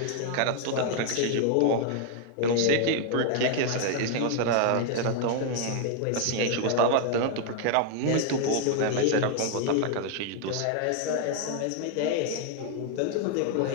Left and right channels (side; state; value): both; different; correlation 0.00